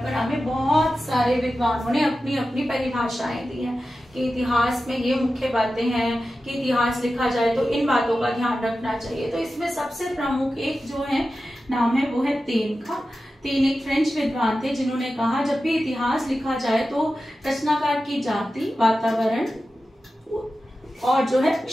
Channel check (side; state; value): both; normal; correlation 0.93